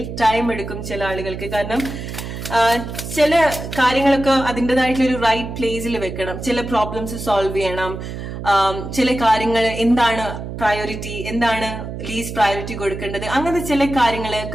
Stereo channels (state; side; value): noise; right; hum, 8 dB below the sound